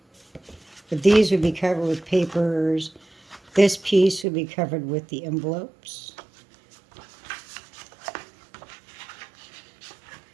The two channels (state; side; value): drops out; left; at 4.2 s